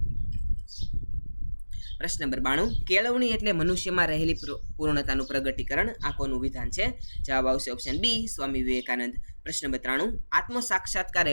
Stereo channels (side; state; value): both; inverted; correlation -1.00